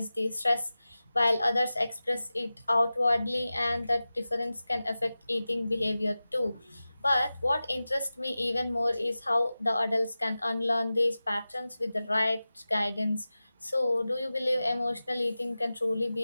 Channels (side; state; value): both; inverted; correlation -0.96